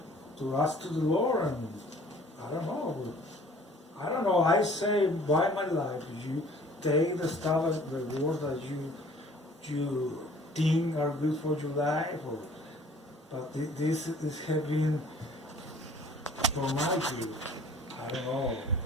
to ask to the Lord, and I don't know, I say by my life, you take the stuff, the words that you think are good for your life, but this is having for my good. I don't know.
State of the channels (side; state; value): both; normal; correlation 0.52